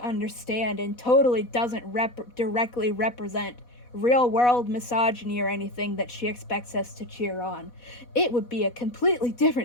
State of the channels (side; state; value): right; late; 4.1 ms